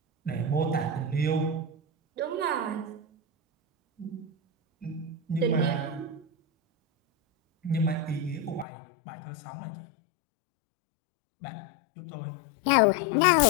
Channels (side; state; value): right; drops out; at 8.7 s